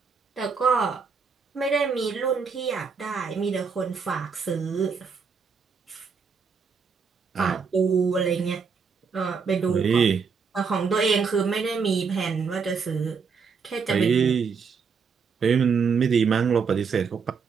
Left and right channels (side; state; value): left; quieter; 5.6 dB